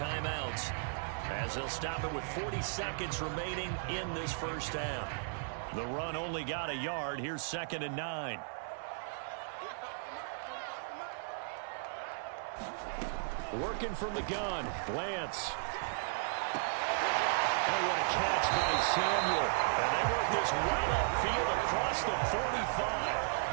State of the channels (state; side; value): silent; left; 54 dB below the other